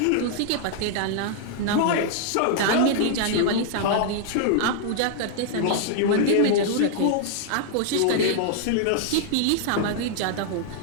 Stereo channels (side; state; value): both; different; correlation -0.01